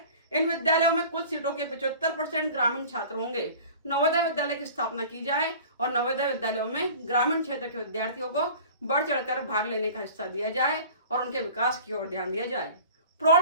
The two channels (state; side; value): inverted; both; correlation -0.42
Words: इन विद्यालयों में कुल सीटों के 75% ग्रामीण छात्र होंगे। नवोदय विद्यालय की स्थापना की जाए और नवोदय विद्यालयों में ग्रामीण क्षेत्र के विद्यार्थियों को बढ़ चढ़कर भाग लेने का हिस्सा दिया जाए और उनके विकास की ओर ध्यान दिया जाए।